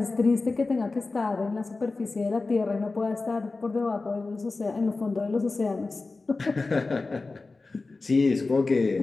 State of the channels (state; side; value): quieter; right; 3.6 dB